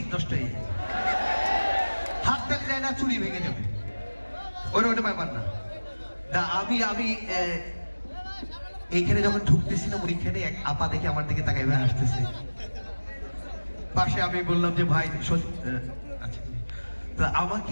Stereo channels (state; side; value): inverted; both; correlation -1.00